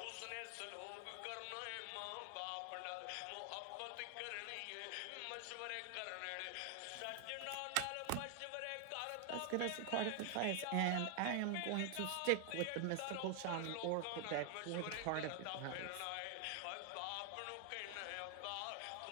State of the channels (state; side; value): different; both; correlation 0.00